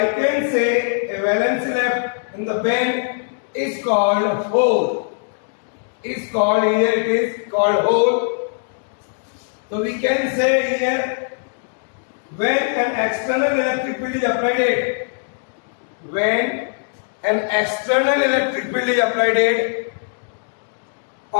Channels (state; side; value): silent; right; digital silence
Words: can say a valency left in the band is called hole. Is called, here it is called hole. So we can say here, when an external electric field is applied, when an external electric field is applied